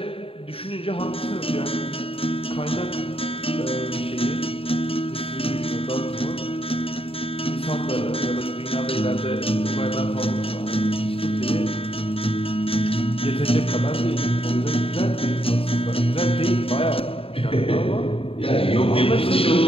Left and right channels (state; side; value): late; right; 0.27 ms